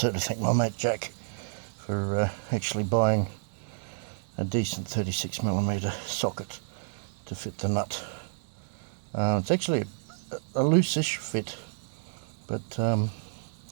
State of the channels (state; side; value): silent; left; digital silence